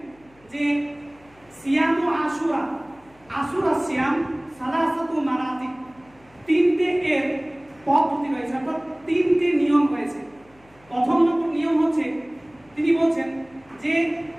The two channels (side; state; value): left; noise; hum, 30 dB below the sound